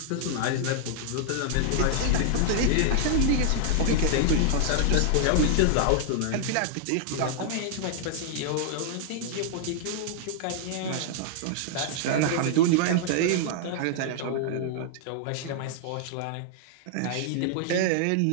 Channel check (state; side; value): different; both; correlation -0.01